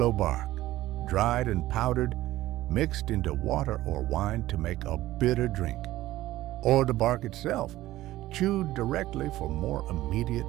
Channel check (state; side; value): quieter; left; 15.8 dB